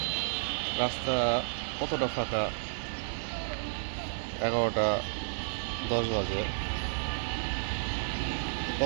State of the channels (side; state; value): left; silent; 57 dB below the other